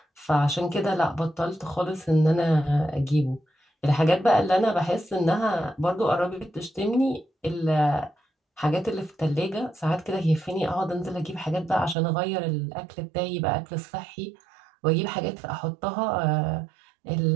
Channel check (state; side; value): drops out; left; at 12.0 s